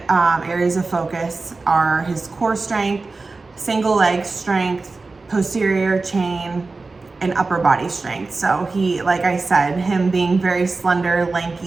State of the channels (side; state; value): left; quieter; 3.7 dB